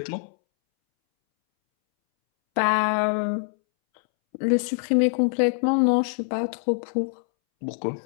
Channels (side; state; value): right; silent; 62 dB below the other